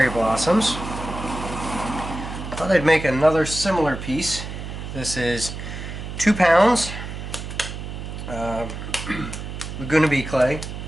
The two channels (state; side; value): noise; right; hum, 8 dB below the sound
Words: blossoms. Thought I'd make another similar piece. This is 2 pounds Laguna Bee clay,